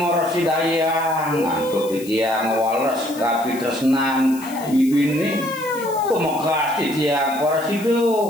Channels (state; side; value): noise; left; hiss, 16 dB below the sound